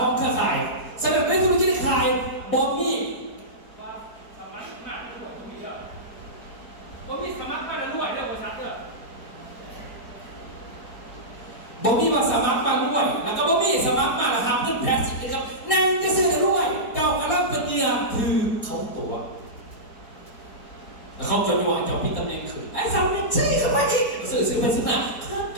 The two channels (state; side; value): late; right; 4.2 ms